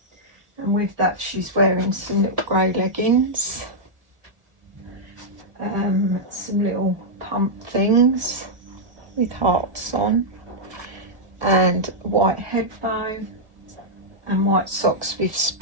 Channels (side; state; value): left; late; 1.6 ms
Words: And with that she's wearing some little grey leggings, some little pump things with hearts on, and a white head bow and white socks with